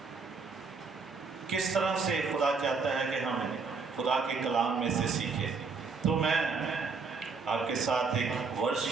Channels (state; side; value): quieter; left; 4.7 dB